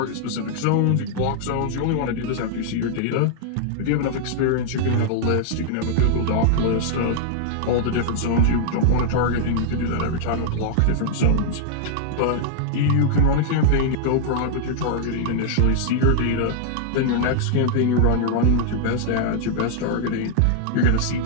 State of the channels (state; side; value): different; both; correlation -0.01